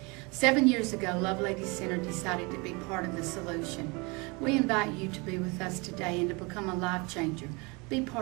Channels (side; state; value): left; quieter; 28.1 dB